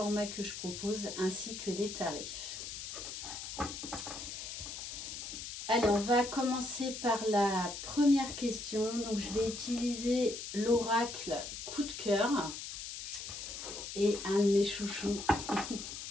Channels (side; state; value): left; noise; hiss, 8 dB below the sound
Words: que je propose ainsi que les tarifs. Allez, on va commencer par la première question. Donc, je vais utiliser l'oracle coup de cœur et un de mes chouchous,